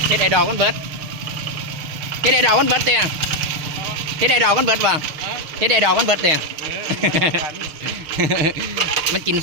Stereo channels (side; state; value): left; late; 6.4 ms